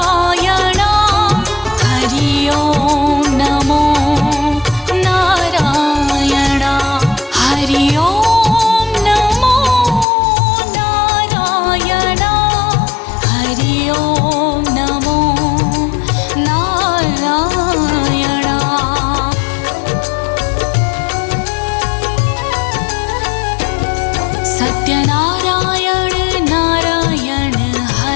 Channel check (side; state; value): right; drops out; at 10.1 s